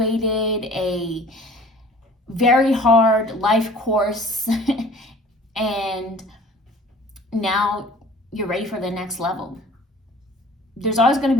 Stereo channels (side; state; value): both; normal; correlation 0.48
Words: a very hard life course and now you're ready for the next level. There's always going to